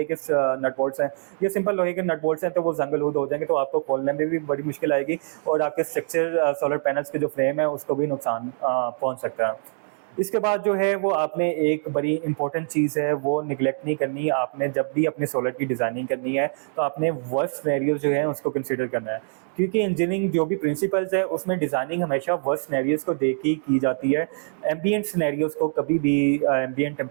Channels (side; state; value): left; silent; digital silence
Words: के नट बोल्ट्स हैं या सिंपल लोहे के नट बोल्ट्स हैं तो वो जंग-लूद हो जाएंगे, तो आपको खोलने में भी बड़ी मुश्किल आएगी और आपके स्ट्रक्चर सोलर पैनल्स के जो फ्रेम है उसको भी नुकसान पहुँच सकता है। इसके बाद जो है वो आपने एक बड़ी इंपॉर्टेंट चीज़ है वो निगलेक्ट नहीं करनी। आपने जब भी अपने सोलर की डिज़ाइनिंग करनी है तो आपने वर्स्ट सिनेरियोज जो हैं उसको कंसिडर करना है, क्योंकि इंजीनियरिंग जो भी प्रिंसिपल्स है उसमें डिज़ाइनिंग हमेशा वर्स्ट सिनेरियोज को देख के की जाती है। एम्बिएंट सिनेरियोज को कभी भी, एम्बिएंट